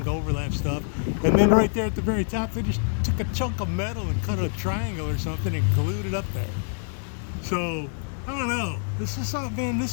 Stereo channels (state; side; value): silent; right; 61 dB below the other